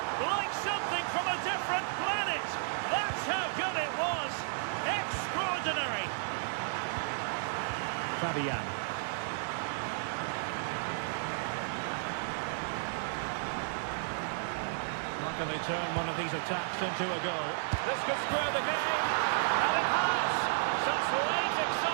Like something from a different planet. That's how good it was. Extraordinary. Fabian. How can they turn one of these attacks into a goal? This could square the game, and it has! Such late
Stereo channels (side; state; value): left; silent; 56 dB below the other